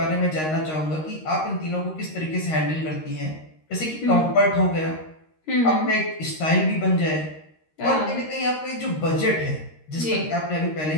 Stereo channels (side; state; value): right; late; 13 ms